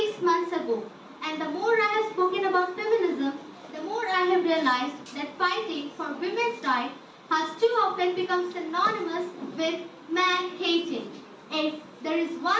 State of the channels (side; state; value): both; identical; correlation 1.00